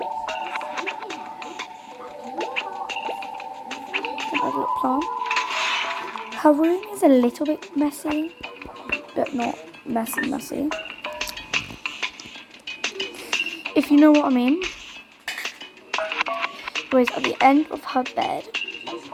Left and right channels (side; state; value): both; identical; correlation 1.00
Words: another little plant. Her room is a little bit messy, but not messy. If you know what I mean. Anyways, at the end of her bed,